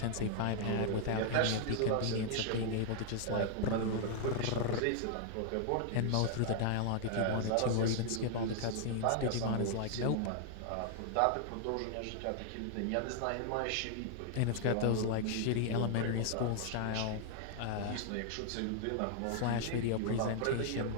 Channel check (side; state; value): both; different; correlation 0.00